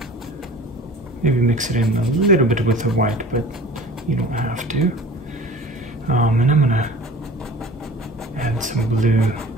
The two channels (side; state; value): both; normal; correlation 0.42